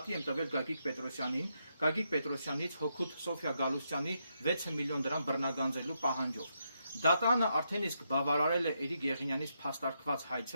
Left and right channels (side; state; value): both; inverted; correlation -0.80